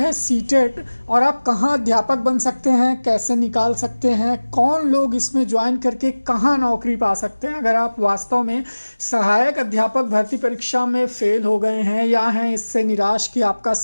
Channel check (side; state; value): both; inverted; correlation -1.00